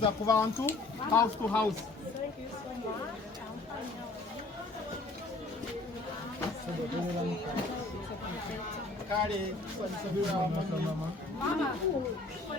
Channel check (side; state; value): right; quieter; 3.3 dB